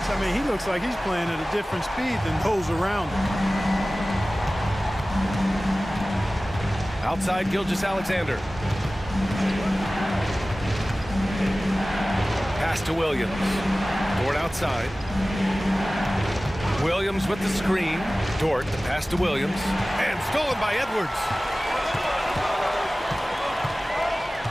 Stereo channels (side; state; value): both; normal; correlation 0.97